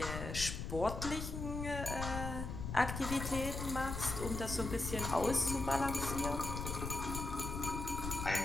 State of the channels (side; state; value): left; noise; rumble, 5 dB below the sound